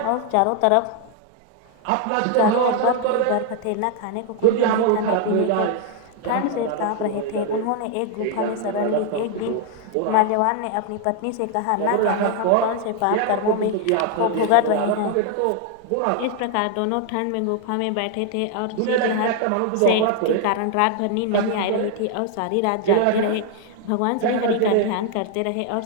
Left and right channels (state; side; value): different; both; correlation 0.00